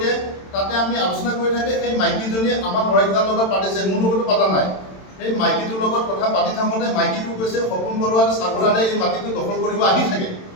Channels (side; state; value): right; late; 27 ms